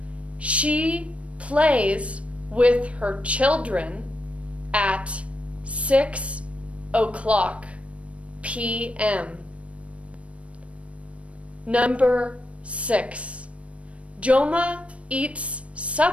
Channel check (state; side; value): late; left; 0.063 ms